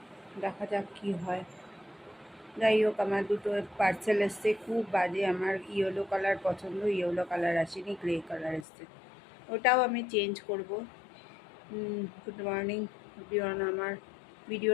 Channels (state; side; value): drops out; right; at 8.7 s